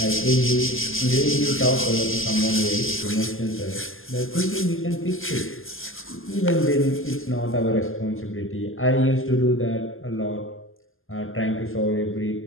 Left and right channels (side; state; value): right; late; 0.59 ms